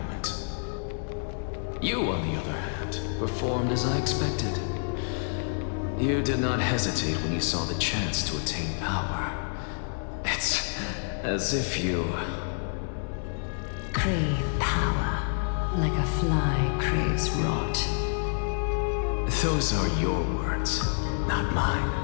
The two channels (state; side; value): silent; right; digital silence